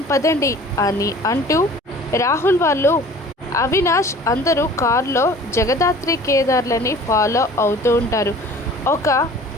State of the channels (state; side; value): normal; both; correlation 0.46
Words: పదండి అని అంటూ రాహుల్ వాళ్ళు అవినాష్ అందరూ కారులో జగదాత్రి కేదార్లని ఫాలో అవుతూ ఉంటారు. ఒక